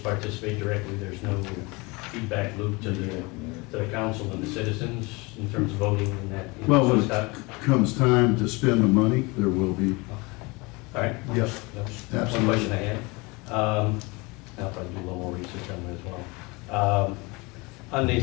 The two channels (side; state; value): right; quieter; 25.9 dB